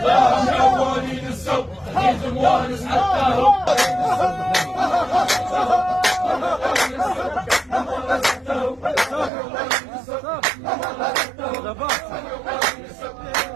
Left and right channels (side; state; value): left; drops out; at 9.3 s